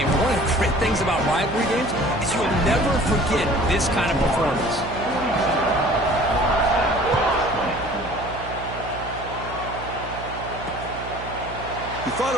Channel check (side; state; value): right; noise; hum, 12 dB below the sound